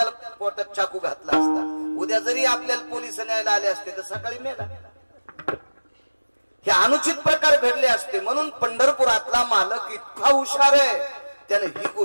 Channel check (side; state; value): both; inverted; correlation -1.00